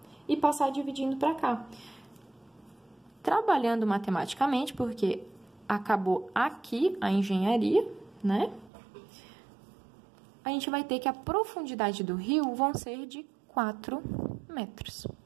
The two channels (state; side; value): drops out; left; at 8.7 s